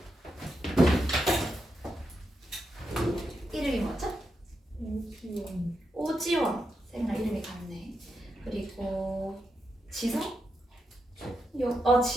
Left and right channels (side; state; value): both; normal; correlation 0.85